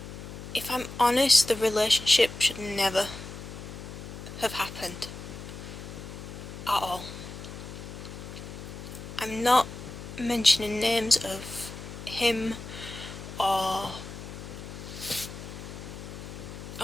if I'm honest, the relationship should never have happened at all. I'm not mentioning names of him or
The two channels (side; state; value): left; noise; hum, 11 dB below the sound